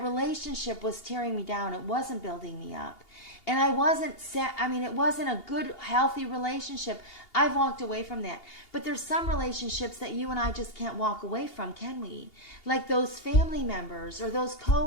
relationship was tearing me down. It wasn't building me up. And it wasn't a good, healthy relationship. I've walked away from that. But there's some relationships that you and I just can't walk away from, can we? Like those family members or those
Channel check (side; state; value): right; late; 2.8 ms